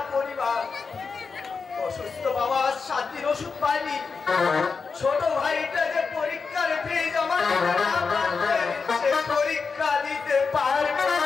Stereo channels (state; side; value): quieter; right; 4.9 dB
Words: পরিবার। অসুস্থ বাবা 7 দিন ওষুধ পায়নি। ছোট ভাইটা যে পরীক্ষার ফিজ আমার সে পরীক্ষা দিতে পারবে